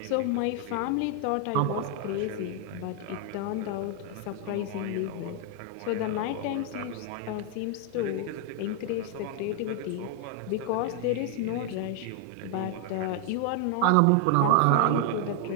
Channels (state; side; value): different; both; correlation 0.00